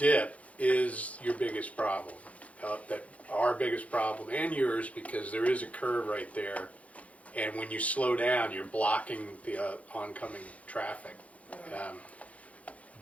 is your biggest problem. That our biggest problem and yours, because there is a curve right there. And when you slow down, you're blocking the oncoming traffic.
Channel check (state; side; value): late; right; 0.066 ms